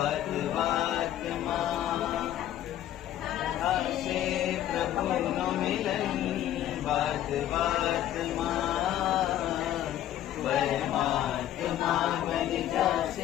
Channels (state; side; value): quieter; right; 12.2 dB